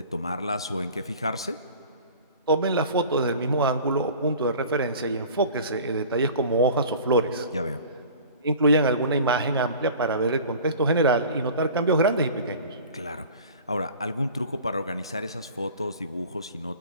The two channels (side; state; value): both; inverted; correlation -0.42